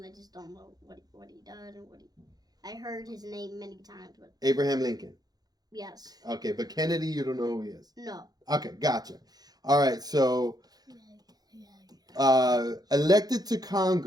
I just don't know what he does and what he. I heard his name many times, but Abraham Lincoln. yes. Okay, but Kennedy, you don't know who he is. No. Okay, gotcha. All right, so elected to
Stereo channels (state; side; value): late; left; 0.19 ms